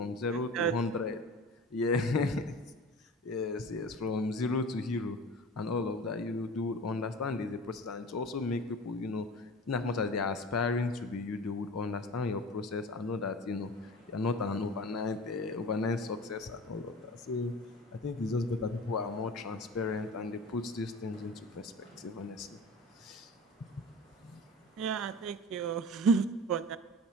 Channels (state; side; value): normal; both; correlation 0.37